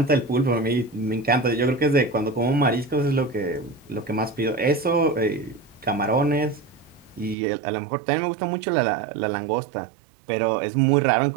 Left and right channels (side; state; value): left; drops out; at 7.4 s